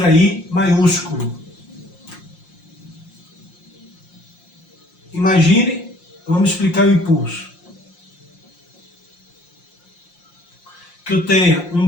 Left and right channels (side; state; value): right; late; 5.7 ms